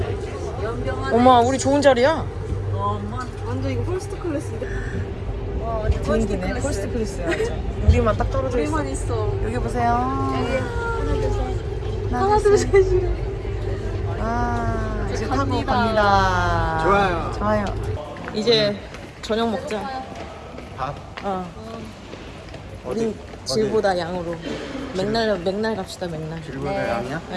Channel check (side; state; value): both; identical; correlation 1.00